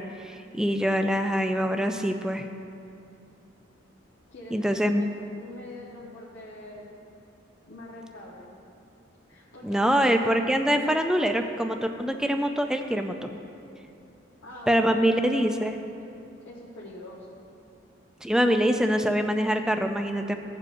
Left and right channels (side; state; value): both; normal; correlation 0.85